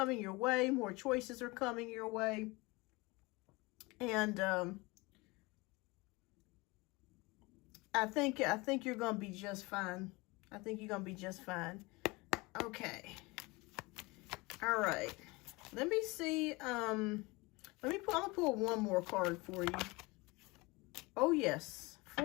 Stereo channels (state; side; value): quieter; right; 24.3 dB